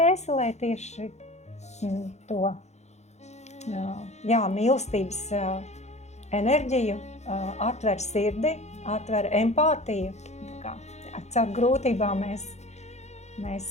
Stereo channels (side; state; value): right; late; 0.33 ms